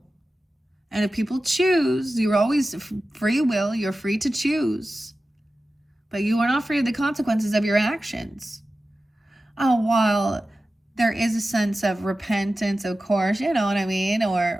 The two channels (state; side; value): normal; both; correlation 0.94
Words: And if people choose, you're always free will. You're free to choose. But you are not free of the consequences of your actions. While there is a sense of repentance, of course, you know what I mean?